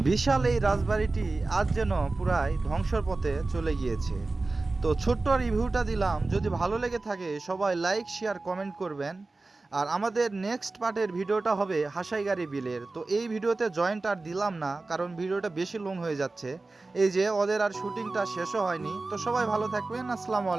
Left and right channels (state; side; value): quieter; left; 3.4 dB